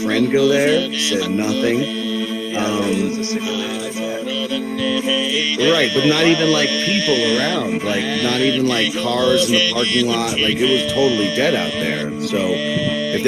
go there. Said nothing. Right, but not even like people around. Like not even like cars in the parking lot. Like it was totally dead out there. So if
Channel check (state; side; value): identical; both; correlation 1.00